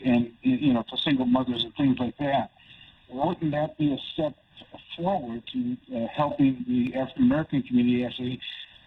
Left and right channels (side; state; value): both; identical; correlation 1.00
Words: and, for single mothers and things like that, wouldn't that be a step forward to helping the African American community actually,